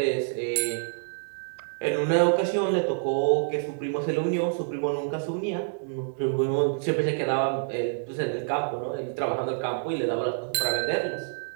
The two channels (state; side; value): silent; left; digital silence